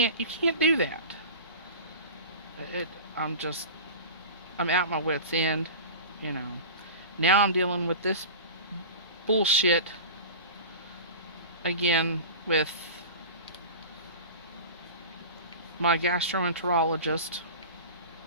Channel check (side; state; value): both; inverted; correlation -0.33